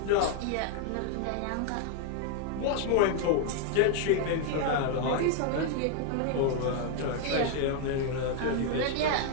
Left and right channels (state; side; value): different; both; correlation 0.00